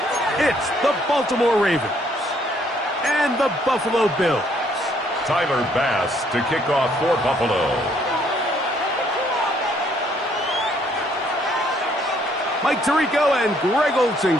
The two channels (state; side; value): normal; both; correlation 0.66